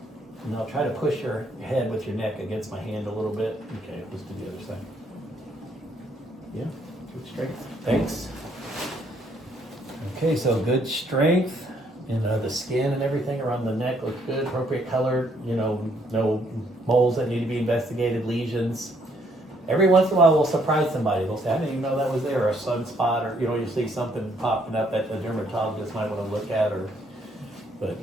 And I'll try to push your head with your neck against my hand a little bit. Okay, let's do the other side. Yeah, good strength. Thanks. Okay, so good strength. The skin and everything around the neck looks good. Appropriate color. No moles that need to be investigated, lesions. Every once in a while we'll surprise somebody. They'll say, I didn't even know that was there, or a sunspot, or you see something popping up that the dermatologist might want to look at, but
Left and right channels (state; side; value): normal; both; correlation 0.68